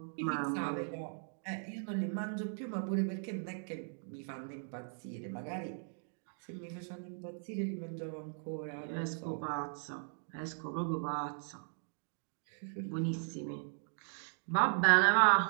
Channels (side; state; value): left; silent; digital silence